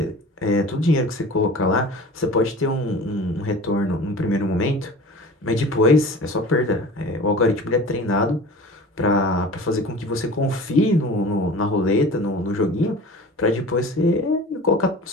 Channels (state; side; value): normal; both; correlation 0.39